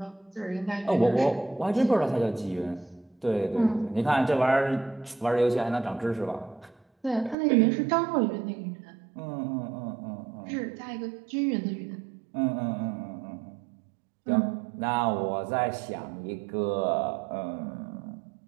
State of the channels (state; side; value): drops out; left; at 7.4 s